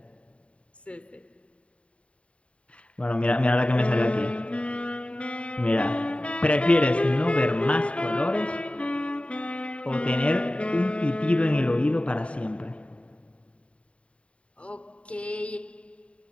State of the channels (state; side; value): late; right; 0.062 ms